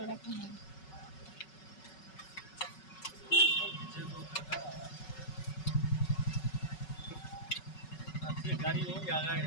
রাখুন। गाड़ी हो गया है।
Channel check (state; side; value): late; right; 5.3 ms